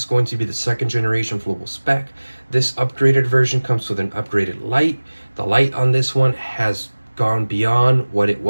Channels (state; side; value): inverted; both; correlation -1.00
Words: going to be the second generation Fluval Spec. This upgraded version comes with an upgraded light. The light on this one has gone beyond what it